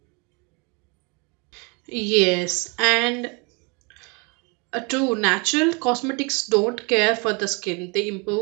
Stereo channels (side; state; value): left; quieter; 31.2 dB